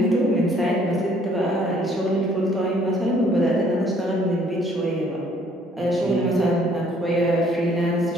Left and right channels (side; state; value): both; normal; correlation 0.62